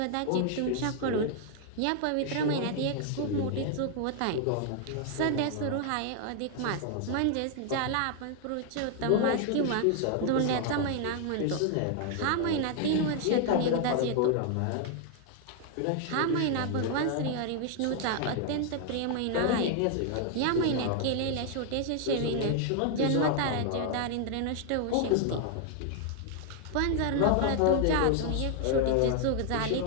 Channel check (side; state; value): both; different; correlation 0.00